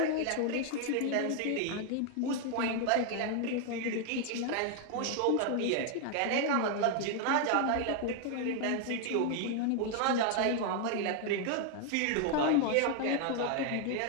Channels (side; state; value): both; different; correlation 0.00